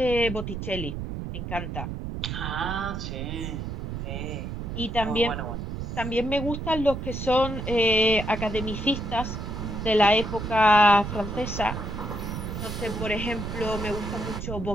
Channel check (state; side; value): noise; right; rumble, 5 dB below the sound